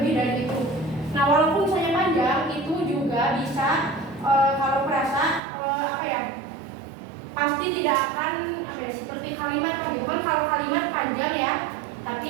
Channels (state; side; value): drops out; left; at 5.4 s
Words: dari itu. Nah, walaupun misalnya panjang, itu juga bisa kalau frasa pasti tidak akan seperti kalimat gitu kan. Kalau kalimat panjang ya,